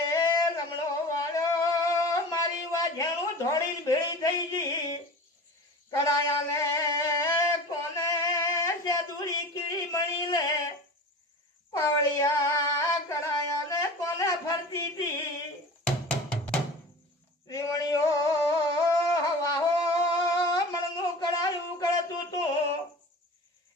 रमणो वालो मारी वाझेणू धोड़ी भेड़ी थई जी कराया ने कोने से दूरी कीड़ी मणी ले पावड़िया कराया ने कोने फरती थी त्रिमणियो हवा हो मणनु करायू करतू तू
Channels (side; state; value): both; normal; correlation 0.36